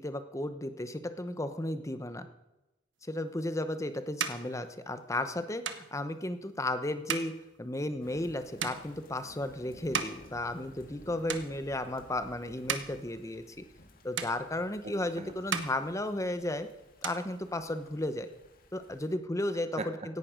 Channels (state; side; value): normal; both; correlation 0.59